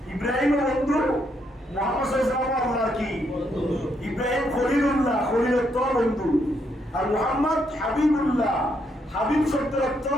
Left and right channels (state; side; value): normal; both; correlation 0.76